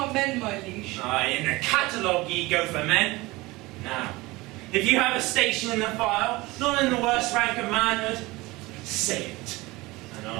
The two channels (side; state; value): left; quieter; 21.4 dB